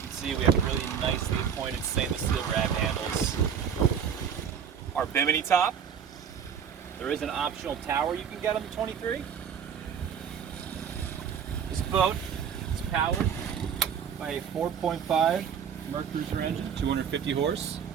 see we have really nicely pointed stainless steel grab handles. Our bimini top. There is an optional tower you can get on the 23. This boat is powered by a 4.5 Mercruiser engine, 250 horse.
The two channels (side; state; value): left; quieter; 7.7 dB